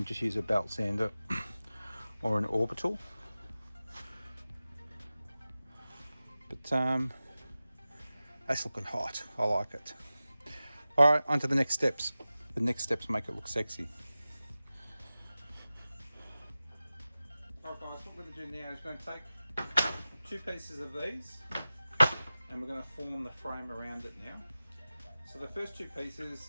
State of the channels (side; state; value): both; inverted; correlation -0.95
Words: just use a belt sander or an orbital. But that's looking hot. I like it. All right, on to the next steps. The next steps make it look sexy. All right, guys, what we're going to do now is we're going to take 2 pieces of these and we're going to form the frame around it now. So the first two pieces,